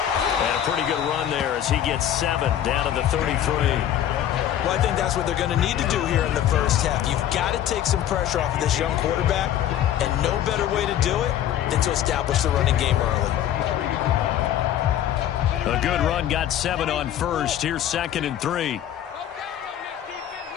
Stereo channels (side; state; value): right; quieter; 11.1 dB